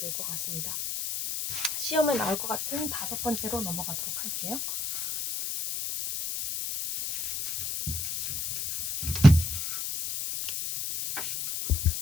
것 같습니다. 시험에 나올 것 같은 다섯 번째로 넘어가도록 할게요.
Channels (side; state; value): left; noise; hiss, 2 dB below the sound